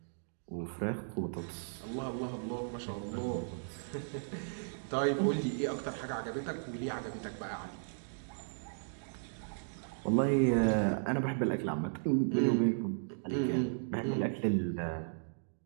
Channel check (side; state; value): left; silent; digital silence